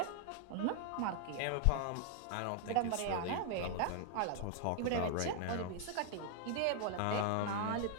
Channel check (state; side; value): different; both; correlation 0.00